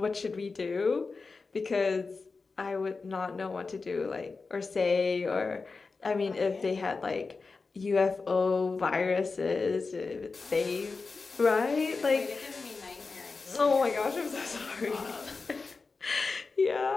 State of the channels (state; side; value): quieter; right; 4.3 dB